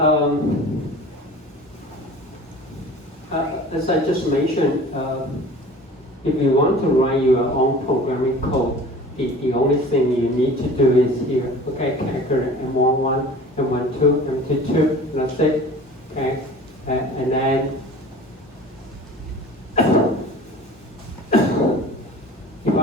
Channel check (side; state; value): both; normal; correlation 0.42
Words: as I just mentioned, if you want to write your own programming code, the only thing you need to do is here, okay, calculate M11, M12, M22, that's it, okay, and then if you